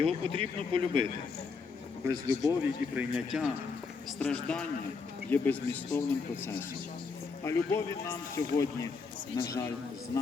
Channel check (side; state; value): right; quieter; 4.8 dB